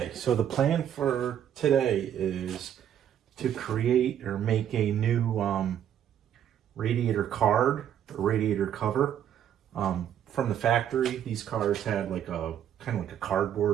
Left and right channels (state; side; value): quieter; left; 10.0 dB